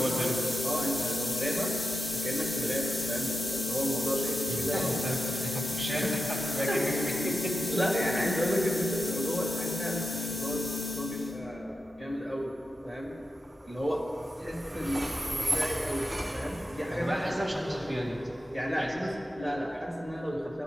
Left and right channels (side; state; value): both; normal; correlation 0.89